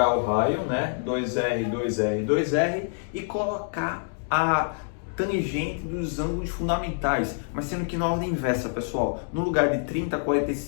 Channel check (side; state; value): right; silent; digital silence